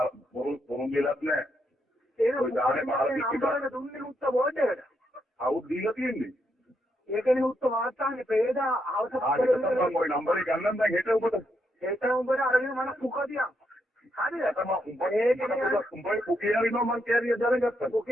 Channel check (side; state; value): both; normal; correlation 0.79